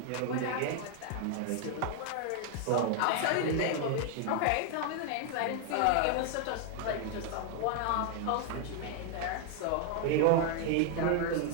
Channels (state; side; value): different; both; correlation 0.00